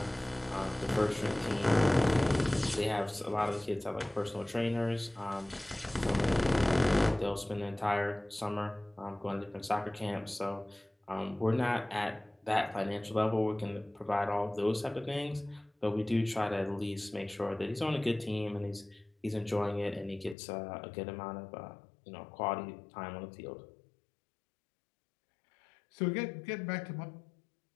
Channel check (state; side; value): drops out; right; at 20.4 s